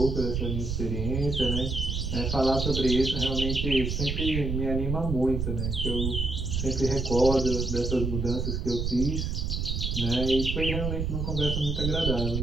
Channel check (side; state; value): right; noise; rumble, 1 dB below the sound